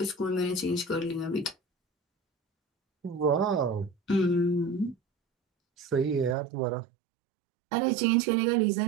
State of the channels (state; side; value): drops out; left; at 6.4 s